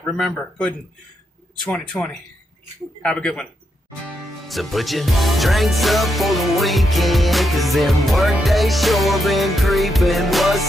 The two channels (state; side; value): normal; both; correlation 0.82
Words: remember, Puddin' 2020. Have a good one. So put your drinks up for the weekend, cause them work days sure been creeping.